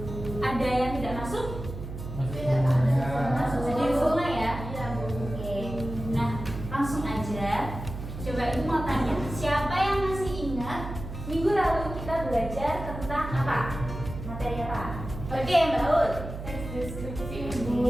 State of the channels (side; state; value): right; noise; hum, 9 dB below the sound